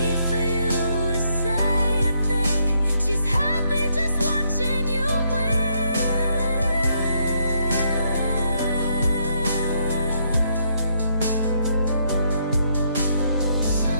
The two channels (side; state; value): both; inverted; correlation -0.74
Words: for you to say a thing. She's happy just watching you win.